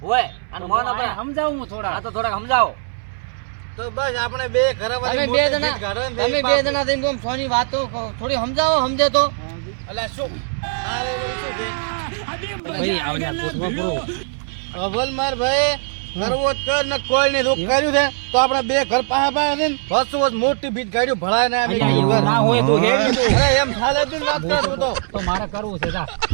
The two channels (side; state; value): left; silent; 62 dB below the other